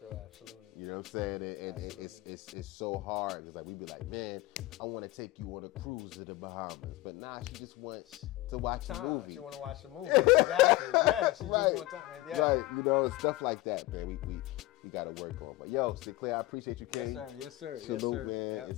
absolutely. You know what I'm saying? And it's so hard because like we be like, man, I want to take you on a cruise to the Bahamas, but nah, she just wants to watch a movie. She want to watch the movie. Exactly. Yeah, she just want time. Yeah. Right. Stuff like that, man. We got to work on. But yo, Sinclair, I appreciate you, Kenny. Yes, sir. Salute, man. Yep,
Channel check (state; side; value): quieter; right; 18.4 dB